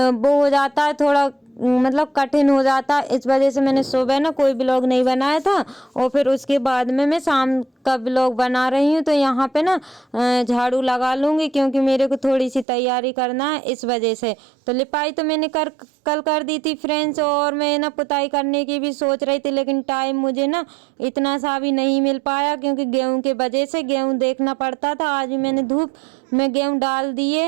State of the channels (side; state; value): left; drops out; at 12.7 s